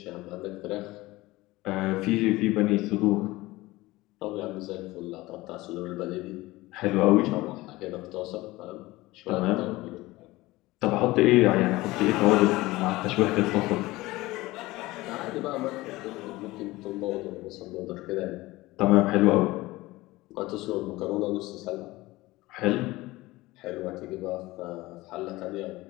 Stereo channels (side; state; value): right; quieter; 19.5 dB